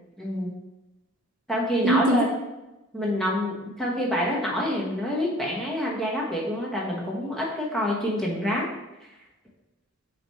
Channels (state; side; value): normal; both; correlation 0.50